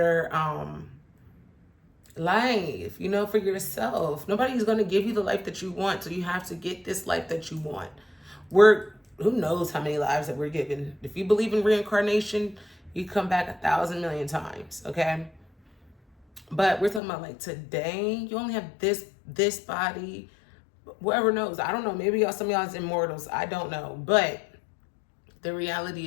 life, you know, for yourself. Nobody's going to give you the life that you want, so you have to get this life that you want. Who knows how many lives that we're given. If you believe in reincarnation, you come back 1,000 million times, okay? But we're talking about like today, you only have this body. Whoever knows, I don't know, maybe some of y'all's immortals, I don't know. But the reality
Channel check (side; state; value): right; drops out; at 17.0 s